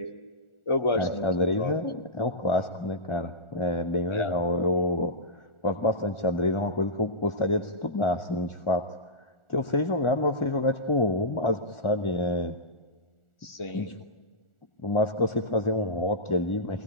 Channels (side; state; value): right; late; 1.4 ms